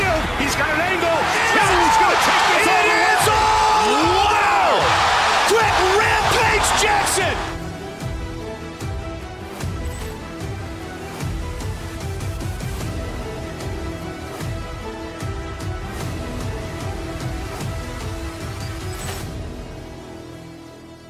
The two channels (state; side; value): identical; both; correlation 1.00